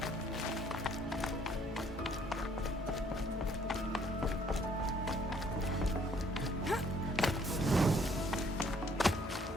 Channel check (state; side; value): normal; both; correlation 0.63